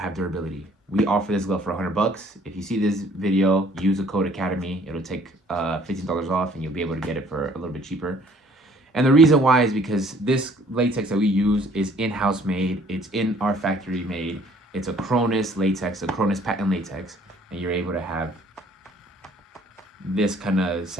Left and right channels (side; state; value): both; normal; correlation 0.58